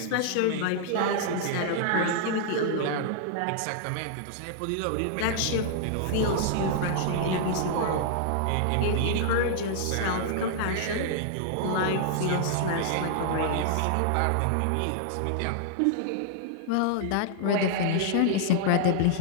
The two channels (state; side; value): different; both; correlation -0.01